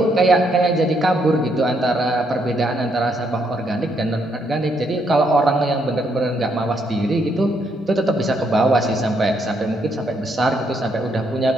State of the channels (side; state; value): both; normal; correlation 0.74